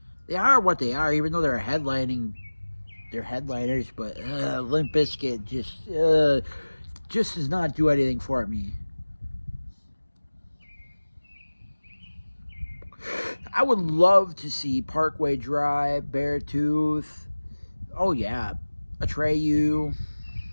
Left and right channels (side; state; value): both; inverted; correlation -1.00